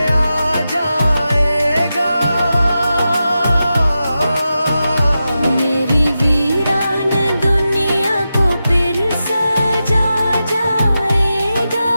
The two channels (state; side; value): inverted; both; correlation -0.91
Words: आ जाएगा। मेरी वीरान दुनिया को फिर सजा जाएगा।